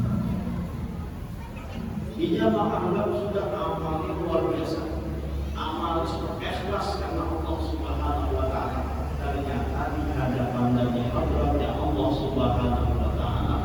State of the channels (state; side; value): identical; both; correlation 1.00